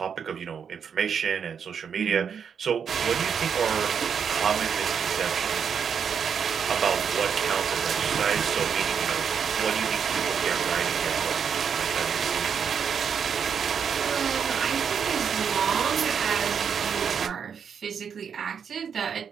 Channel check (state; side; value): quieter; left; 7.1 dB